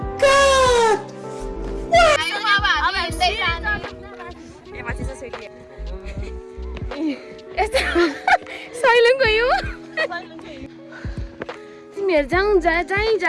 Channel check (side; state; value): both; identical; correlation 1.00